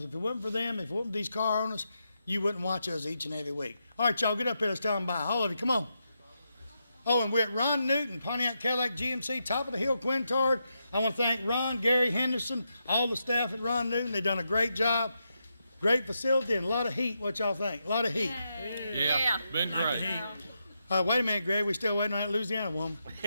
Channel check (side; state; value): both; inverted; correlation -0.84